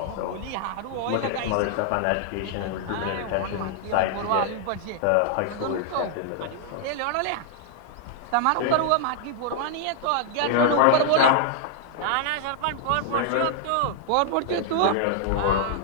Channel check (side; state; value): both; different; correlation -0.01